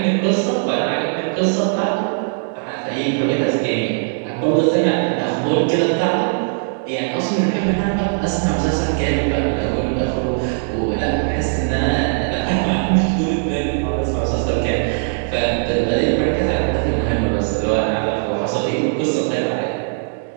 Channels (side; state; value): left; silent; digital silence